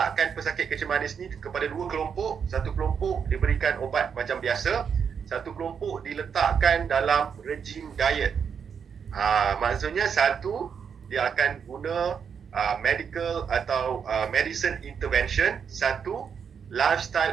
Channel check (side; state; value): left; quieter; 7.0 dB